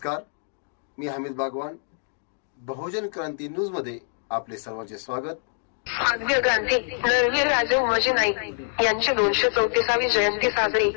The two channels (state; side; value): silent; right; digital silence